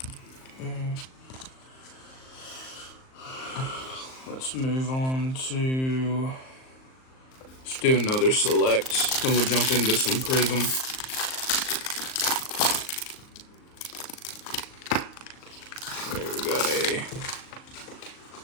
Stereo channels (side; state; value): right; late; 38 ms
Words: Let's move on to, let's do another select, then we'll jump into some Prism. Okay, we got a